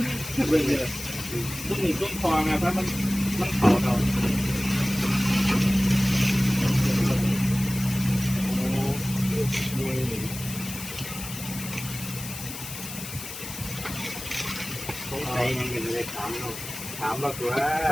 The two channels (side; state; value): left; noise; hiss, 10 dB below the sound